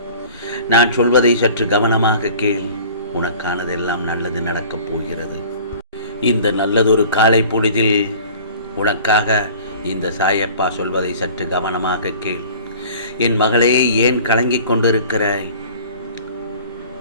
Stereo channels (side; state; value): both; inverted; correlation -0.45